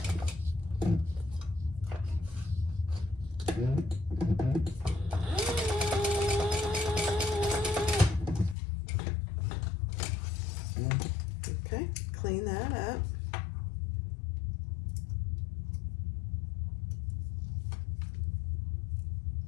clean that up.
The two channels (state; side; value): drops out; right; at 8.6 s